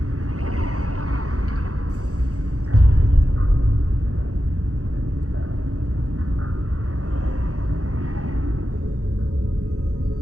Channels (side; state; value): left; late; 0.66 ms